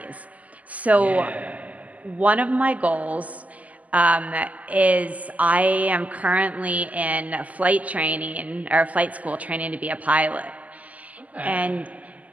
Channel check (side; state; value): left; late; 0.074 ms